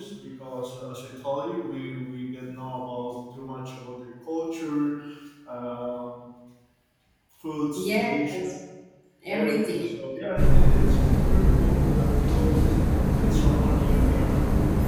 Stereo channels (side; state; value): both; identical; correlation 1.00